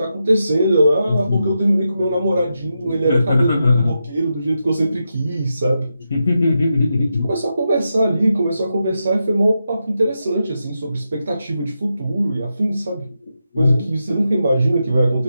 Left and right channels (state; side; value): inverted; both; correlation -0.87